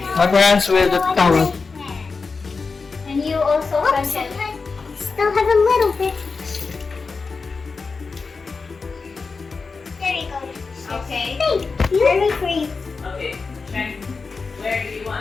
wipe your hands with the towel. And you also, Franchelle. Still have a little bit. There you go. Okay. Hey, very free. Okay, check. Where do you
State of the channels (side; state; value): right; quieter; 4.5 dB